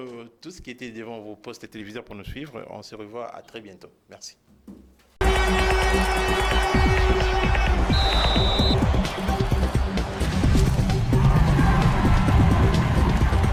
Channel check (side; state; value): both; identical; correlation 1.00